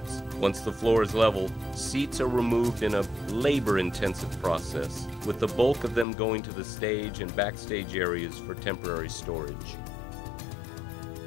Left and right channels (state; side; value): drops out; right; at 6.1 s